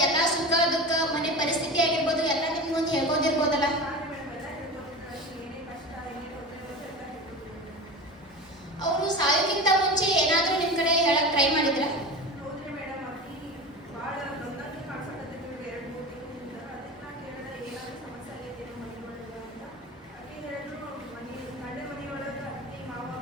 ಎಲ್ಲಾ ಸುಖ ದುಃಖ ಮನೆ ಪರಿಸ್ಥಿತಿ ಆಗಿರ್ಬೋದು ಎಲ್ಲ ನಿಮ್ ಮುಂದೆ ಹೇಳ್ಬೋದಿರ್ಬೋದಲ್ಲ. ಅವರು ಸಾಯೋಕ್ಕಿಂತ ಮುಂಚೆ ಏನಾದ್ರೂ ನಿಮ್ ಕಡೆ ಹೇಳಕ್ ಟ್ರೈ ಮಾಡಿದ್ರ?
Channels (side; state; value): both; normal; correlation 0.29